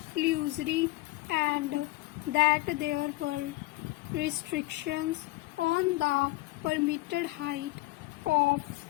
illusory and that there were restrictions on the permitted height of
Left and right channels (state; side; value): quieter; right; 20.2 dB